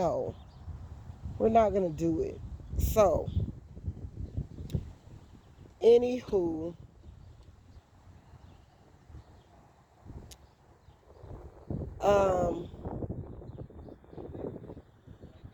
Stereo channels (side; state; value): both; identical; correlation 1.00